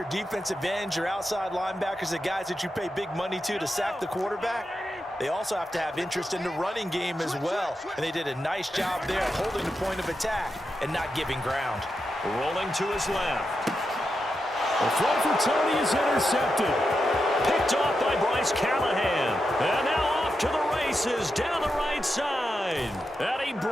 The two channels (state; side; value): normal; both; correlation 0.87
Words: defensive ends, your outside linebackers, the guys that you pay big money to sack the quarterback, they also have to have interest in the running game as well. And they did a nice job there holding the point of attack and not giving ground. Rolling to his left. The throw for Tony is intercepted. Picked off by Bryce Callahan. And now off to the races down the right side. And he